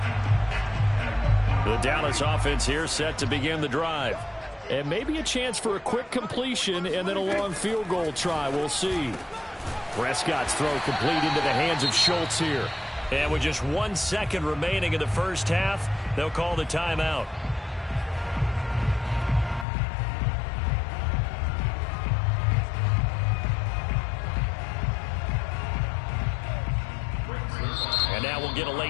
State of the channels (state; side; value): drops out; right; at 19.7 s